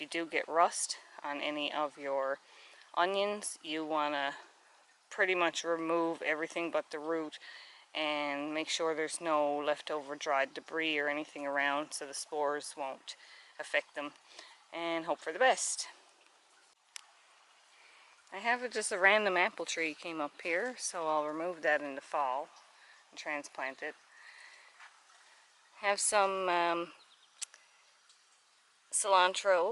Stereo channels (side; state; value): both; identical; correlation 1.00